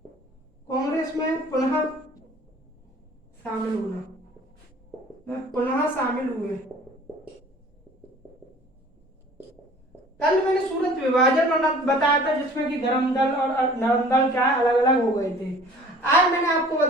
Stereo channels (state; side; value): normal; both; correlation 0.49